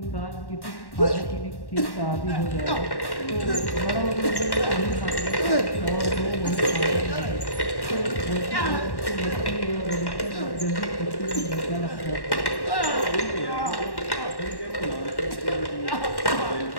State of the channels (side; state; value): right; late; 1.1 ms